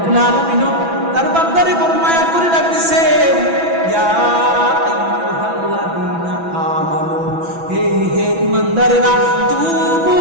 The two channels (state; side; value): late; left; 6.0 ms